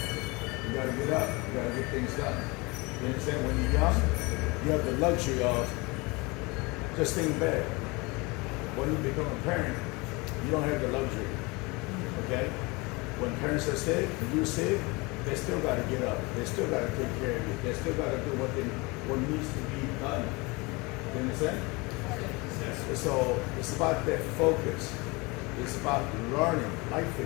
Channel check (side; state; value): right; quieter; 25.8 dB